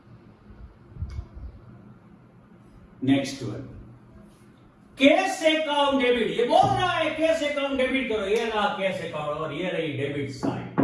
Next one cash account debit, ये बोल रहा है कैश अकाउंट डेबिट करो, ये रहा कैश अकाउंट और ये रही डेबिट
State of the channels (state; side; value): identical; both; correlation 1.00